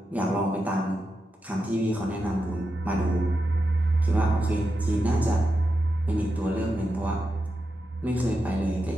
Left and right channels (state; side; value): normal; both; correlation 0.88